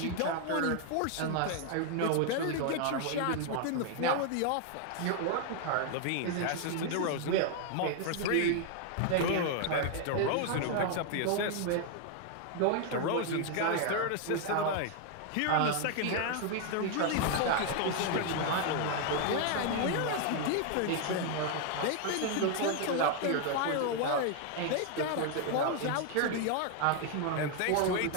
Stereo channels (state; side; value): different; both; correlation 0.00